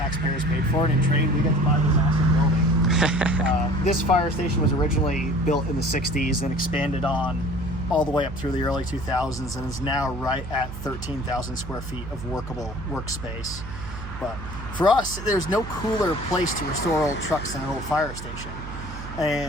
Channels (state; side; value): noise; right; hum, 10 dB below the sound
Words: paid for it. In trade, we get to buy this awesome building. This fire station was originally built in the 60s and expanded on all the way up through the early 2000s and is now right at 13,000 square feet of workable workspace. But for us, there's no cooler place to restore old trucks than an old fire station.